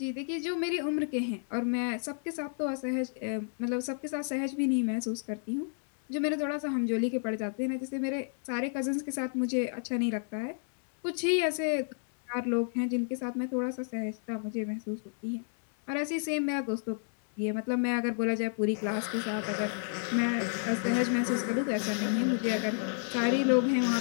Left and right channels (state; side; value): silent; right; digital silence